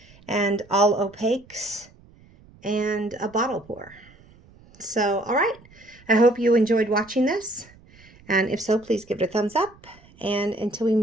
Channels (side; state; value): right; noise; rumble, 26 dB below the sound